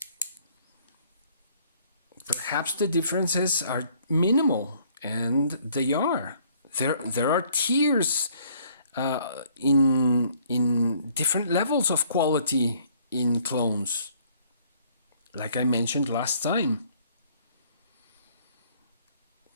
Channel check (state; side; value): inverted; both; correlation -0.61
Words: Perhaps the differences are minimal, and they are. There are tiers in different levels of quality in clones, like I mentioned last time.